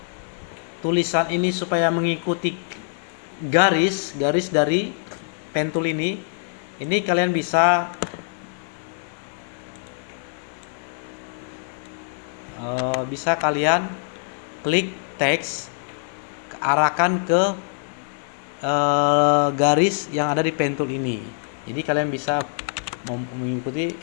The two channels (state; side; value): silent; right; 63 dB below the other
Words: tulisan ini supaya mengikuti garis dari pen tool ini kalian bisa kalian klik teks, arahkan ke garis yang ada di pen tool ini. Jadi kalian bisa mengikuti